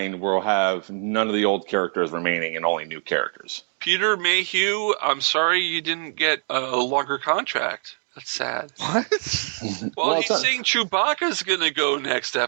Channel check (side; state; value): left; silent; 61 dB below the other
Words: we'll have none of the old characters remaining and only new characters. Peter Mayhew, I'm sorry you didn't get a longer contract. That's sad. What? Well, it's he's not- saying Chewbacca's going to go next He